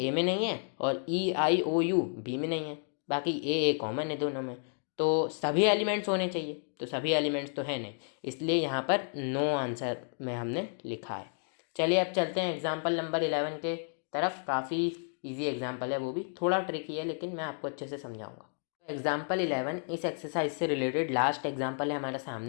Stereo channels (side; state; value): right; silent; 57 dB below the other